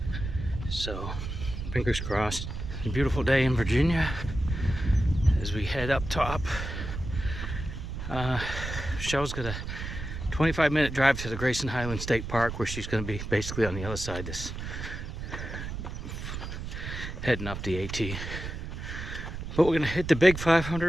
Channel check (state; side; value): noise; right; rumble, 7 dB below the sound